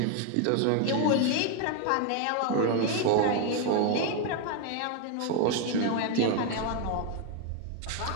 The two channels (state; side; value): different; both; correlation 0.01